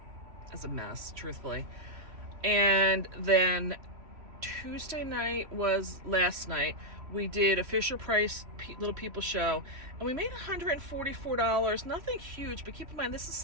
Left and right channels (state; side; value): late; left; 3.0 ms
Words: as a mess, truthfully. And then Tuesday night was last night. We did a Fisher Price Little People show, and we made $144. Nothing huge, but keep in mind, this is